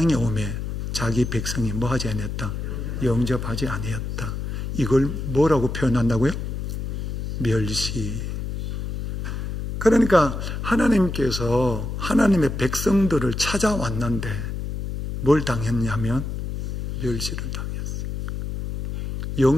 오매 자기 백성이 뭐 하지 아니했다? 영접하지 아니했다. 이걸 뭐라고 표현한다고요? 멸시. 그러니까 하나님께서 하나님의 백성들을 찾아왔는데 뭘 당했냐면 멸시를 당했어요.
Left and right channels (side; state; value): left; noise; hum, 4 dB below the sound